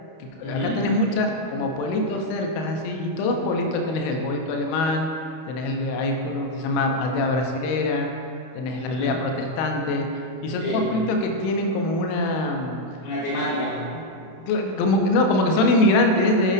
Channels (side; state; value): right; late; 31 ms